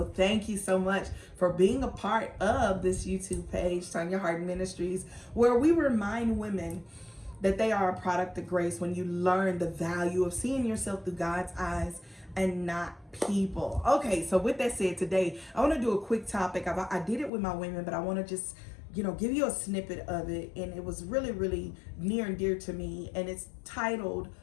thank you so much for being a part of this YouTube page, Tonya Harden Ministries, where we remind women that they are a product of grace when you learn the value of seeing yourself through God's eyes and not people. Okay, so with that said, today I want to do a quick topic. I did it with my women, but I want to just give you a snippet of it, and it was really near and dear to me, and it's titled,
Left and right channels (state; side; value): drops out; right; at 17.3 s